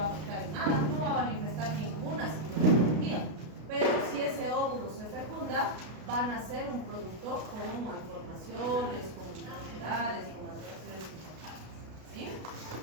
a afectar en nada, no va a manifestar ninguna sintomatología, pero si ese óvulo se fecunda, van a ser un producto con malformaciones, con enfermedades, con alteraciones importantes, ¿sí?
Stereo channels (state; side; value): late; left; 33 ms